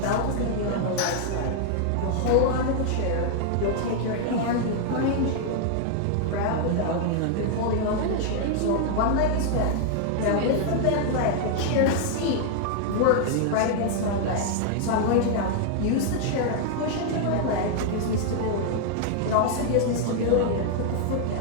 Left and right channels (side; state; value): both; different; correlation 0.00